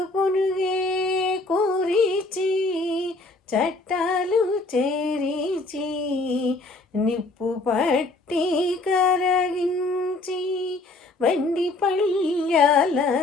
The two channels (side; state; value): right; quieter; 3.2 dB